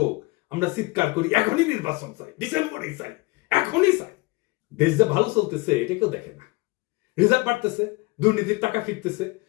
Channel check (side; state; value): right; quieter; 24.0 dB